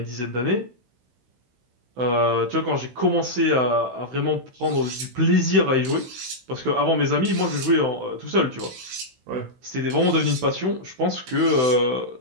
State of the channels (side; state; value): left; late; 16 ms